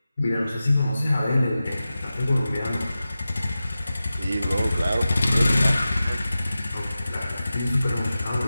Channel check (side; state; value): both; inverted; correlation -0.94